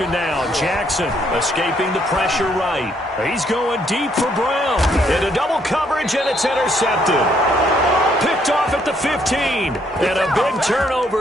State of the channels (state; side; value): normal; both; correlation 0.70